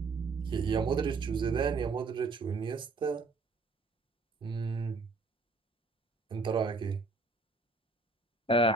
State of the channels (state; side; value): quieter; left; 3.7 dB